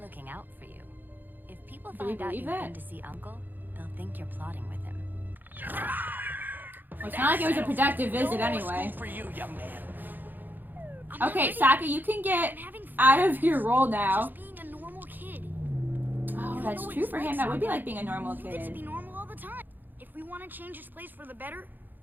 looking out for you. If people Do we find out believe you've that? been to see Uncle, they'll think you're plotting with him. Well, it's not like it was a productive visit anyway. For you, young man. I'm not Okay, ready. Sokka, you can get I'm having fun. out of your role now. Just being a normal kid. Oh, You that's know what true it's for like, him. That would be Sokka. like being a normal You get to be kid. normal all the time. If we want to change this place for the better,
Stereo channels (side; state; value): left; late; 0.088 ms